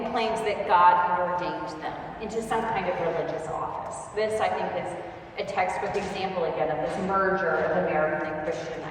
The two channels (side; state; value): both; identical; correlation 1.00